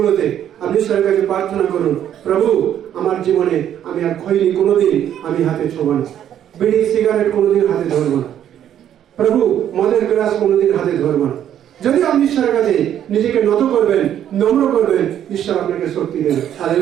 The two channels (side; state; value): left; quieter; 10.4 dB